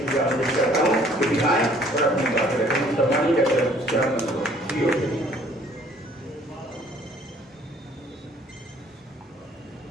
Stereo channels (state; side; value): normal; both; correlation 0.58